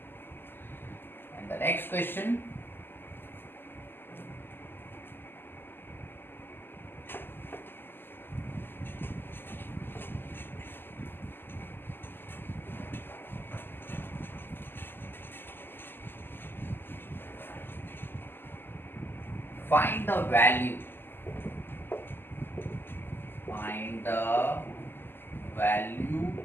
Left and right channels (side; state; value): right; late; 0.099 ms